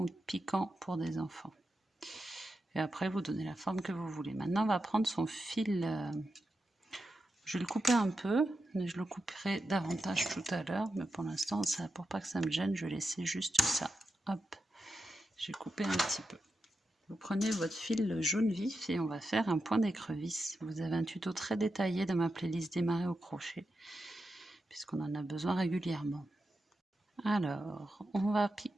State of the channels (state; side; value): normal; both; correlation 0.88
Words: ou de piquant pour des enfants. Et après, vous donnez la forme que vous voulez. Maintenant, on va prendre son fil. Je vais le couper un peu, mais je le couperai davantage tout à l'heure. Mais pour l'instant, pour pas que ça me gêne, je vais laisser juste ça. Hop, j'ai coupé un petit peu. Vous prenez votre fil jaune vif et on va faire un point d'écrevisse. Vous avez un tuto très détaillé dans ma playlist démarrer au crochet, puisqu'on en a besoin régulièrement. Alors, on va